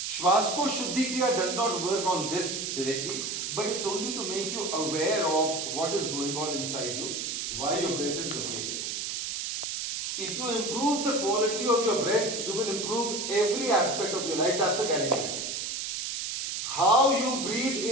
Swaskosh Shuddhi Kriya does not work on this directly, but it's only to make you aware of what is going on inside you, why your breath is the way it is. If you improve the quality of your breath, you will improve every aspect of your life. That's a guarantee. How you breathe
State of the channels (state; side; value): noise; right; hiss, 3 dB below the sound